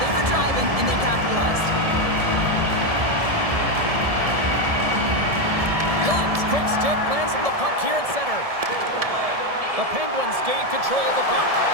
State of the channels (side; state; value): left; late; 1.7 ms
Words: were driving, and they capitalized. Lund's quick stick lands from the puck here at center. The Penguins gain control of the puck.